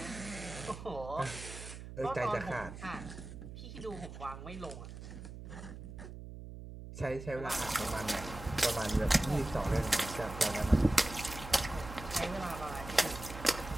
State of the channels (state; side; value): noise; right; hum, 11 dB below the sound